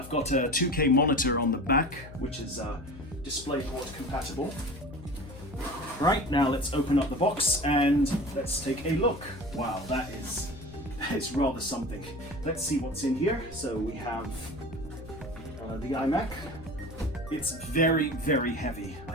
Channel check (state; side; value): noise; left; hum, 15 dB below the sound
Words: got a 2K monitor on the back, which is DisplayPort compatible. Right, now let's open up the box and let's take a look. Wow, that is rather something. Let's see what's in here. So we have the iMac. It's very, very heavy, I